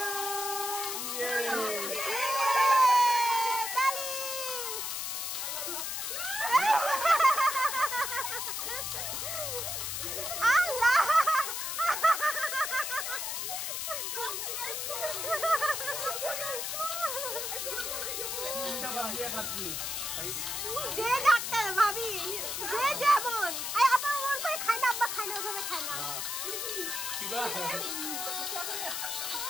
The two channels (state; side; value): noise; left; hiss, 3 dB below the sound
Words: Tali. Allah. যে doctor ভাবি যে যেমন I আপা ওর করে খায় না আব্বা খায় না ওভাবে খায় না